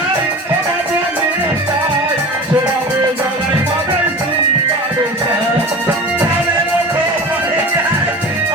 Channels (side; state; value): both; normal; correlation 0.34